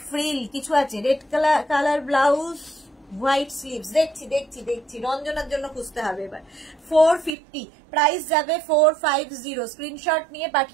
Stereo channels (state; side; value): drops out; left; at 7.4 s